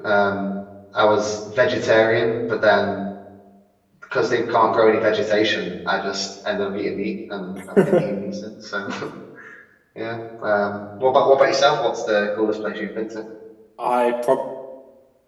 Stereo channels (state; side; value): identical; both; correlation 1.00